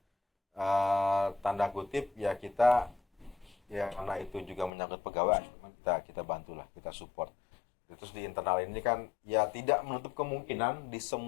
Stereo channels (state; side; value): drops out; right; at 4.7 s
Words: tanda kutip ya kita ya karena itu juga menyangkut pegawai, kita bantulah, kita support. Terus di internal ini kan ya tidak menutup kemungkinan di